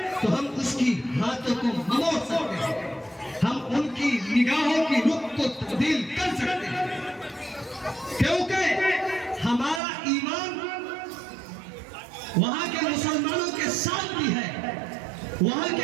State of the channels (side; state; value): left; drops out; at 9.8 s